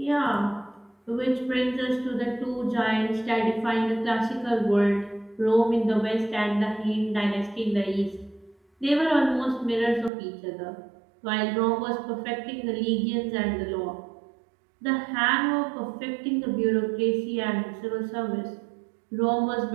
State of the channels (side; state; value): left; drops out; at 10.1 s